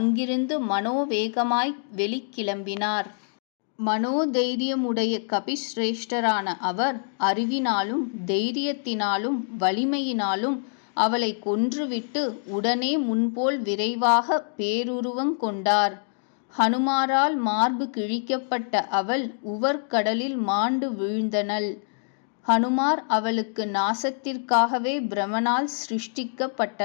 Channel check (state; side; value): silent; right; digital silence